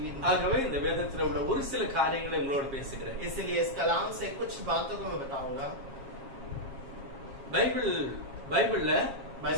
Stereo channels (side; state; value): left; late; 7.4 ms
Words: ஆகவே இந்த வேதத்தில் உள்ள ஒரு சில காரியங்களை உங்களோடு பேசுகிறேன். इसलिए इस कलाम से कुछ बातों को मैं बताऊंगा. பைபிள்ல